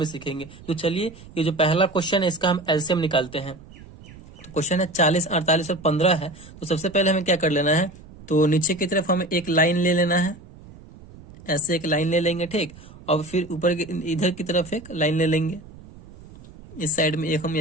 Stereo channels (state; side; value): noise; right; rumble, 19 dB below the sound